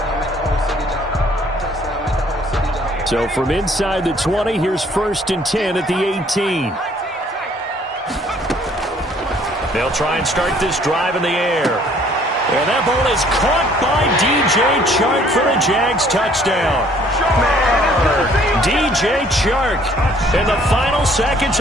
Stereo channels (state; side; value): normal; both; correlation 0.60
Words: So from inside the 20, here's first and 10 at the 18. They'll try and start this drive in the air. And that ball is caught by DJ Chark for a Jags touchdown. DJ Chark in the final seconds